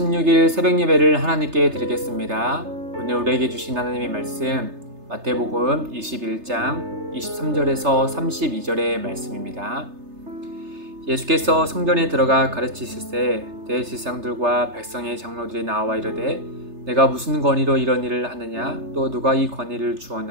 새벽 예배를 하나님께 드리겠습니다. 오늘 우리에게 주신 하나님의 말씀 마태복음 21장 23절에서 32절의 말씀입니다. 예수께서 성전에 들어가 가르치실 때 대제사장들과 백성의 장로들이 나와 이르되 내가 무슨 권위로 이런 일을 하느냐 또 누가 이 권위를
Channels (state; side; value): late; left; 3.3 ms